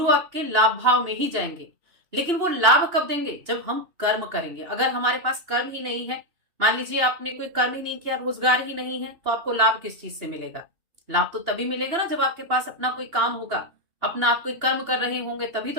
आपके लाभ भाव में ही जाएंगे। लेकिन वो लाभ कब देंगे? जब हम कर्म करेंगे। अगर हमारे पास कर्म ही नहीं है, मान लीजिए आपने कोई कर्म ही नहीं किया, रोजगार ही नहीं है, तो आपको लाभ किस चीज से मिलेगा? लाभ तो तभी मिलेगा ना जब आपके पास अपना कोई काम होगा, अपना आप कोई कर्म कर रहे होंगे, तभी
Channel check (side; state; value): left; late; 2.8 ms